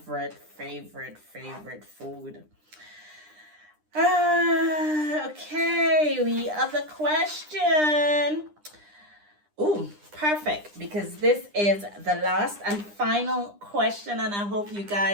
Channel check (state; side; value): late; left; 9.9 ms